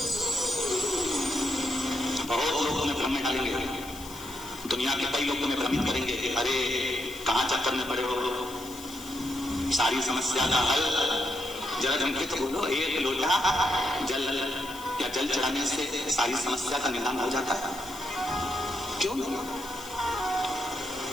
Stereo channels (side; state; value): left; noise; hiss, 15 dB below the sound